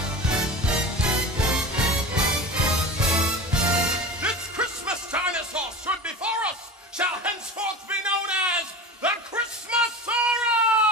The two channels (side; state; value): both; normal; correlation 0.31